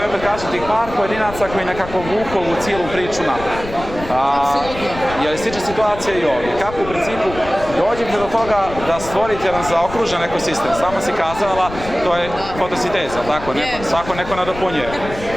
opet, kažem, tih par pojedinaca koji nekako vuku u cijelu priču naprijed. Je li slična situacija i ovdje? Kako u principu dođete do toga da stvorite jedan zaokružen ekosistem? Samo si kazala, to je fotosinteza, tako? Svako neko nadopunjuje.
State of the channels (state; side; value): noise; left; rumble, 12 dB below the sound